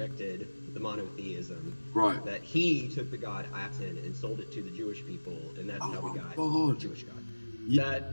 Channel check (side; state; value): both; inverted; correlation -1.00